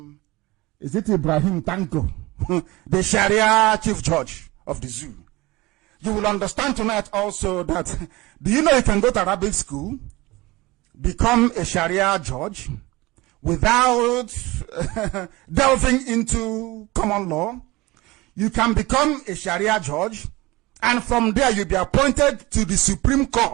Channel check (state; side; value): quieter; left; 21.1 dB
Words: is it Ibrahim Tanko, the Sharia chief judge of the zoo. You will understand tonight also that, do you know you can go to Arabic school, become a Sharia judge, without delving into common law? You can become a Sharia judge, and from there you'll be appointed to the Supreme